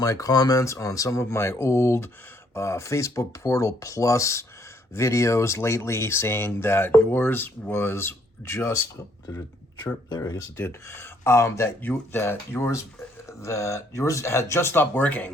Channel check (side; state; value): both; normal; correlation 0.68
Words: comments on some of my old Facebook Portal Plus videos lately, saying that yours was just did it chirp there? I guess it did. That yours had just stopped